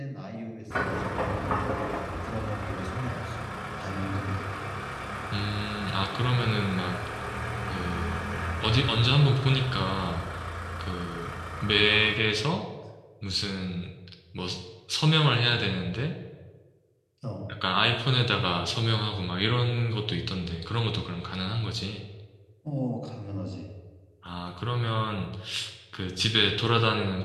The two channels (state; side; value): identical; both; correlation 1.00